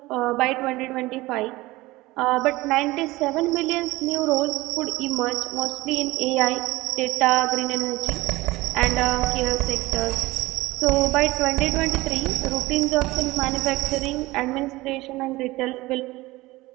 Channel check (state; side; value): quieter; left; 19.8 dB